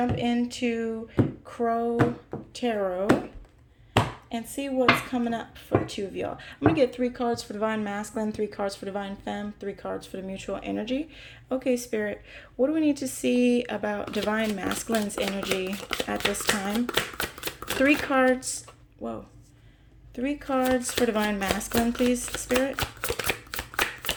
into Crow Tarot and see what's coming up for the two of y'all. I'm going to get 3 cards for Divine Masculine, 3 cards for Divine Femme, 3 cards for the Mutual Energy. Okay, Spirit, what do we need to see about Divine Masculine's energy at this time? 3 cards. Whoa. 3 cards for Divine Masculine, please, Spirit.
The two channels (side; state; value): both; identical; correlation 1.00